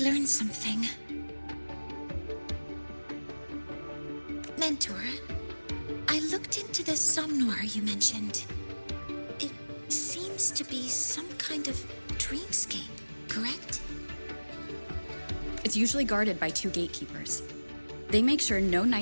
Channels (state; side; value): inverted; both; correlation -1.00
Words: learn something. Mentor, I looked into the somnoir you mentioned. It seems to be some kind of dreamscape, correct? It's usually guarded by two gatekeepers. They make sure no